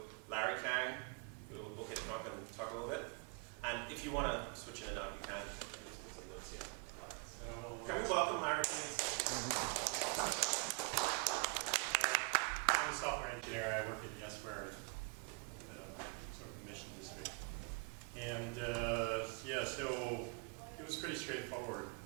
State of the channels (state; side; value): quieter; left; 32.9 dB